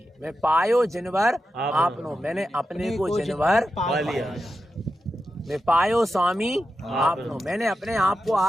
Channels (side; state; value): both; normal; correlation 0.89